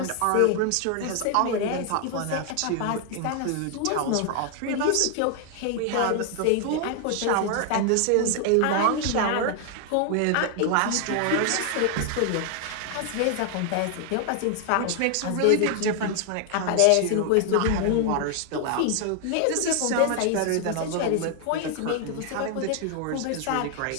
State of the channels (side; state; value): both; different; correlation 0.00